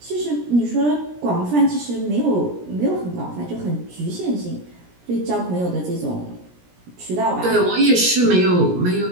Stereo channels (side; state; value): left; late; 17 ms